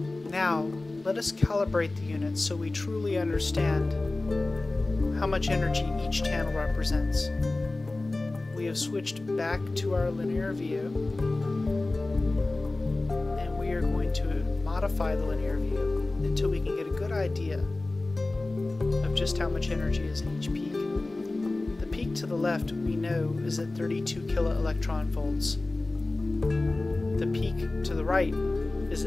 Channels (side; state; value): right; quieter; 3.0 dB